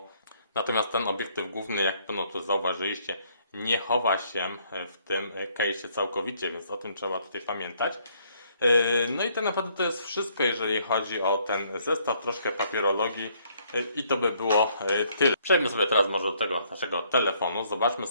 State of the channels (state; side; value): inverted; both; correlation -0.67